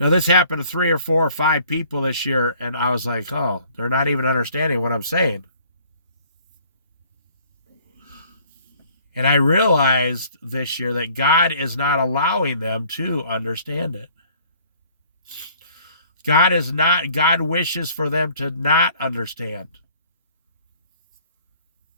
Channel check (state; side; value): inverted; both; correlation -0.56